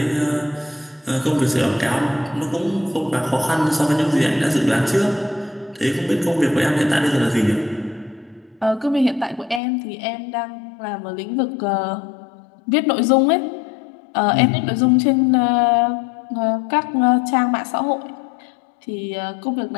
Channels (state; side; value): drops out; right; at 9.6 s